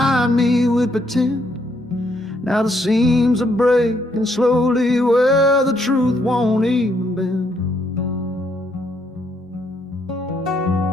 me with pretend. Now the seams are breaking slowly where the truth won't even bend.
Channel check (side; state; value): both; normal; correlation 0.73